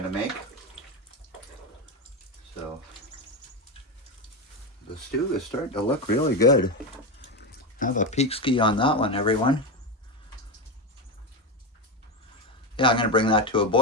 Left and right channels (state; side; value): normal; both; correlation 0.15